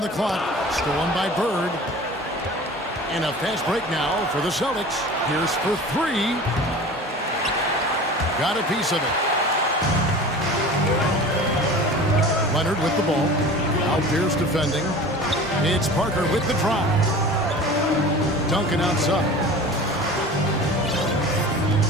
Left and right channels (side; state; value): both; normal; correlation 0.38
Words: the clock. Stolen by Bird. And a fast break now for the Celtics. Pierce for 3. Got a piece of it. Leonard with the ball. Now Pierce defending. It's Parker with the drive. Duncan outside.